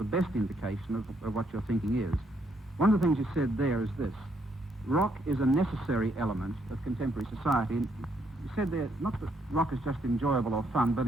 best indication of what your thinking is. One of the things you said there is this: rock is a necessary element of contemporary society. And you said there, not that rock is just enjoyable or fun, but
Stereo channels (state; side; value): normal; both; correlation 0.73